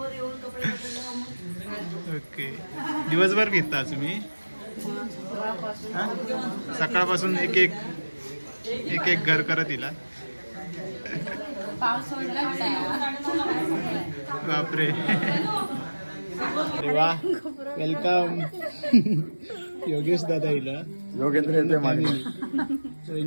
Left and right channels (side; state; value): both; inverted; correlation -1.00